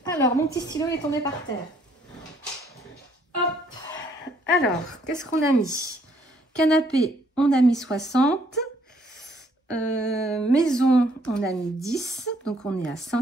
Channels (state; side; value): normal; both; correlation 0.66